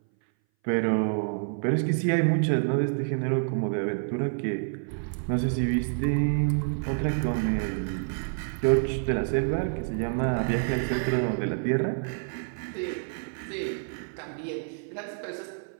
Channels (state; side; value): silent; left; 59 dB below the other